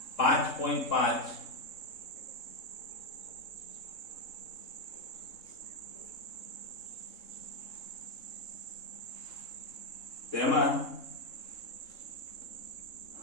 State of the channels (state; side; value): late; right; 3.7 ms